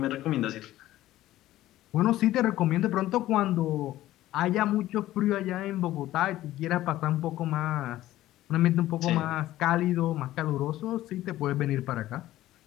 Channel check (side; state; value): right; quieter; 14.9 dB